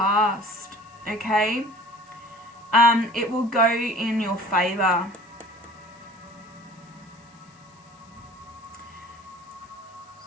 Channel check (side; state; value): left; noise; hiss, 30 dB below the sound